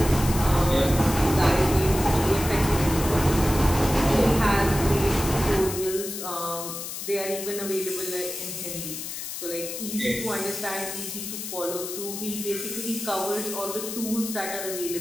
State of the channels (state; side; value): noise; left; hiss, 7 dB below the sound